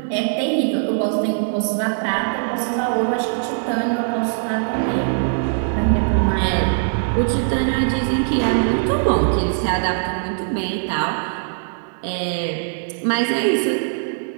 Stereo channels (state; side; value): silent; left; digital silence